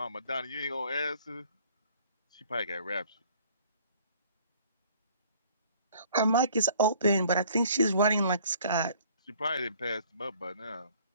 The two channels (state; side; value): inverted; both; correlation -0.56